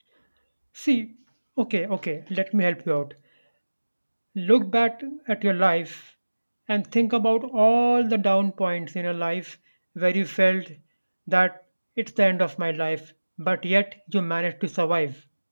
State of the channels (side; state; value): both; inverted; correlation -1.00